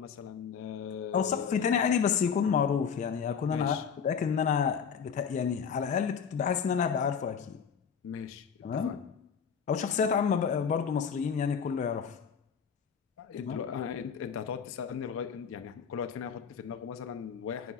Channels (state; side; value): quieter; right; 6.8 dB